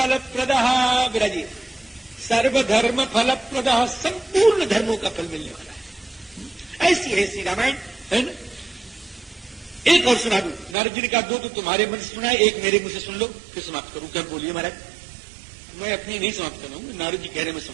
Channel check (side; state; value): left; drops out; at 10.8 s